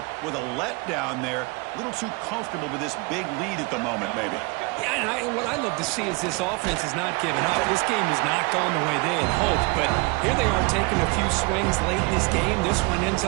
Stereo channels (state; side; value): quieter; left; 27.7 dB